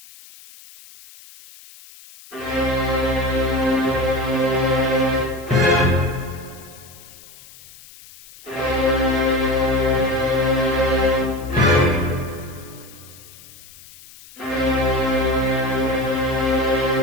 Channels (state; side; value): noise; left; hiss, 21 dB below the sound